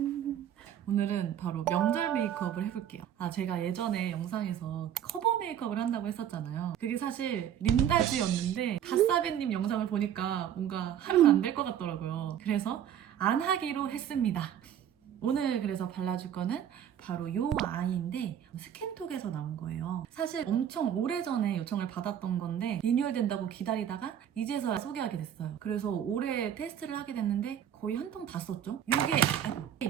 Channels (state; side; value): quieter; left; 9.8 dB